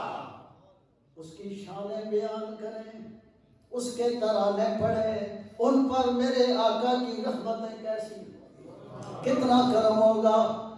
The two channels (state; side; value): identical; both; correlation 1.00